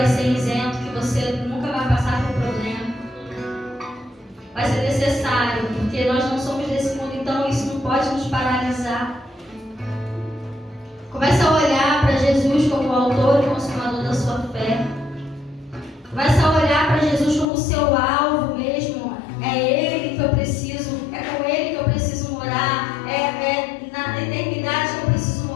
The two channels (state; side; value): drops out; right; at 17.4 s